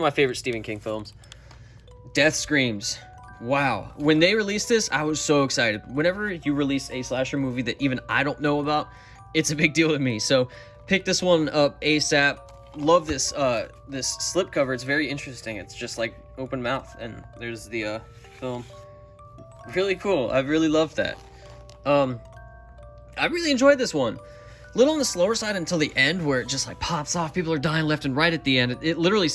my favorite Stephen King films. Death Screams. Wow. When they released this, I was so excited. Whenever you release a slasher movie that even I don't know about, it's a big deal to me. So pick this one up ASAP. Love this this slipcover. It's very interesting. It's just like open mouth, and there's the film. Really cool. I really loved that. I really enjoyed this one. A little on the slower side until the end, where it just like pops off. People are dying left and right at the end. It literally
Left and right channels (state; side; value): identical; both; correlation 1.00